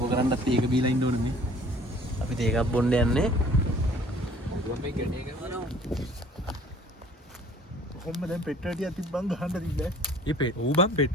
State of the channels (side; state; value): both; normal; correlation 0.52